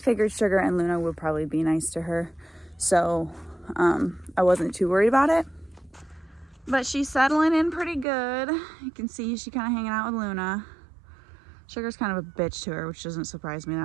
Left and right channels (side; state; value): left; drops out; at 8.1 s